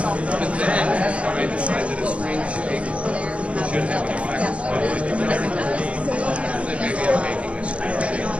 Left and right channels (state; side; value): late; left; 0.062 ms